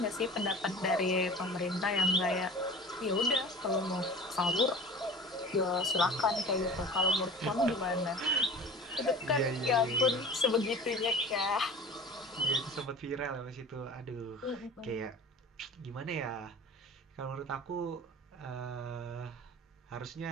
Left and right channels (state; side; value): normal; both; correlation 0.39